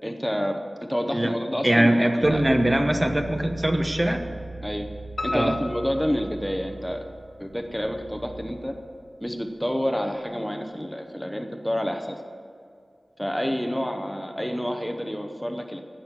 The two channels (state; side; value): normal; both; correlation 0.98